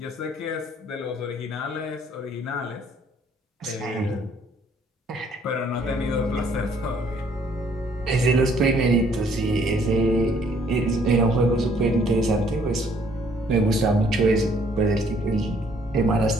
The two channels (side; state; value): both; normal; correlation 0.63